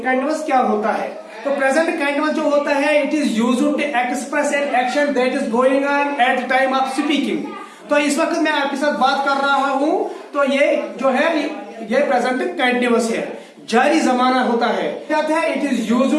क्या होता है। तो प्रेजेंट कंटीन्यूअस जो होता है, it is used to express an action that is going on at the time of speaking. तो इस वक्त मैं आपके साथ बात कर रहा हूं, तो ये जो है ये प्रेजेंट कंटीन्यूअस है, जारी जमाना होता है। It is used to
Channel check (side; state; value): both; identical; correlation 1.00